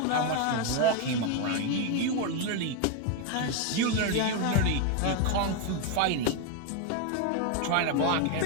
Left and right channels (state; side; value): different; both; correlation 0.01